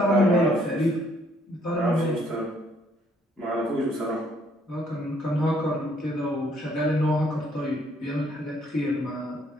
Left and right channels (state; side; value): normal; both; correlation 0.66